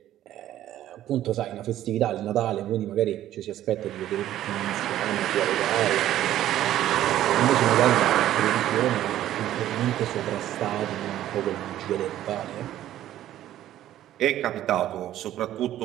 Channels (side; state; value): left; quieter; 12.8 dB